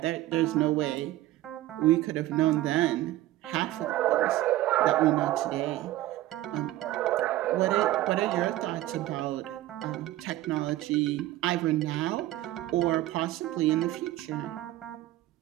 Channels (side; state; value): left; quieter; 15.6 dB